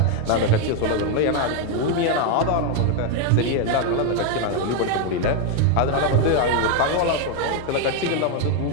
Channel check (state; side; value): different; both; correlation 0.01